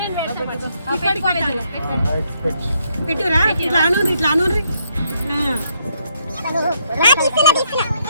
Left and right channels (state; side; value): inverted; both; correlation -0.74